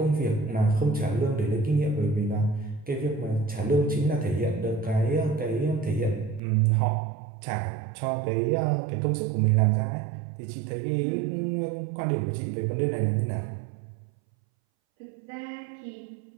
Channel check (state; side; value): drops out; left; at 6.4 s